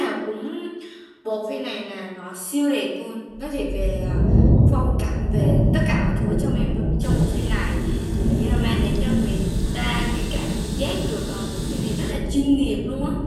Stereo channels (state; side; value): identical; both; correlation 1.00